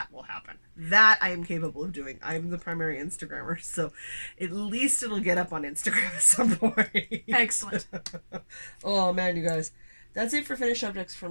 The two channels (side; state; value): both; inverted; correlation -1.00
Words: will happen. That I am capable of doing. I'm the primary Instagrammer, so at least it'll get up on Instagram at some point. Excellent. Oh man, you guys. That's it for finished objects for